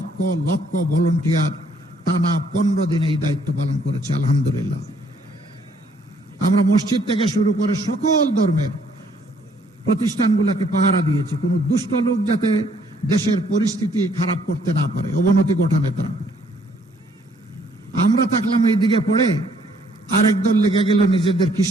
লক্ষ ভলান্টিয়ার টানা 15 দিন এই দায়িত্ব পালন করেছে। আলহামদুলিল্লাহ। আমরা মসজিদ থেকে শুরু করে সকল ধর্মের প্রতিষ্ঠানগুলোকে পাহারা দিয়েছি, কোনো দুষ্ট লোক যাতে দেশের পরিস্থিতি খারাপ করতে না পারে, অবনতি ঘটাতে না পারে। আমরা থাকলাম এই দিকে পড়ে, আরেক দল লেগে গেল নিজেদের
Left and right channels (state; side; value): normal; both; correlation 0.65